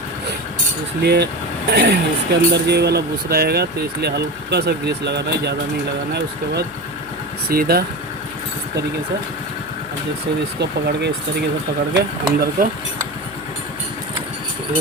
इसलिए इसके अंदर ये वाला बुश रहेगा तो इसलिए हल्का सा ग्रीस लगाना है, ज़्यादा नहीं लगाना है। उसके बाद सीधा इस तरीके से अब जैसे इसको पकड़ के इस तरीके से पकड़ के अंदर को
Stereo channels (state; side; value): noise; left; hum, 23 dB below the sound